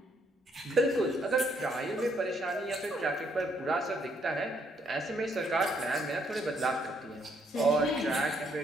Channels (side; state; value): both; normal; correlation 0.71